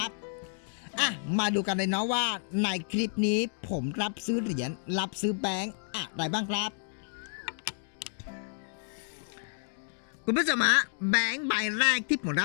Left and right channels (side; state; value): right; silent; digital silence